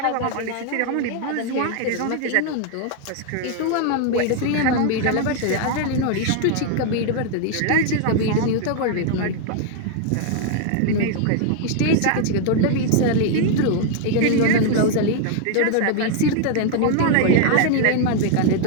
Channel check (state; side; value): different; both; correlation 0.00